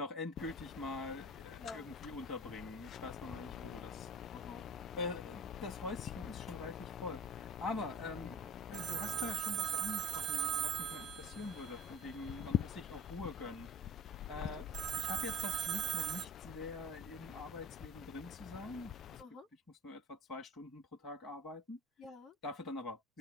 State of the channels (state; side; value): normal; both; correlation 0.43